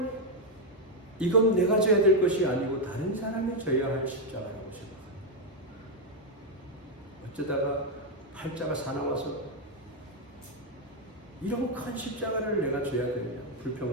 이건 내가 져야 될 것이 아니고 다른 사람이 져야 할 십자가라고 생각합니다. 어쩌다가 팔자가 사나워서 이런 큰 십자가를 내가 져야 되느냐,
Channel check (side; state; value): both; normal; correlation 0.02